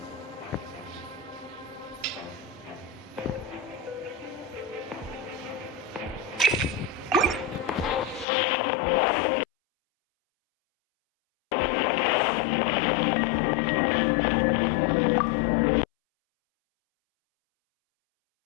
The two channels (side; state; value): right; drops out; at 8.2 s